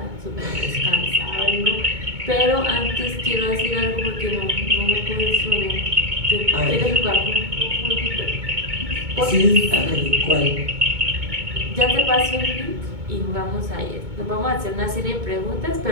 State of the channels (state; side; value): late; left; 2.2 ms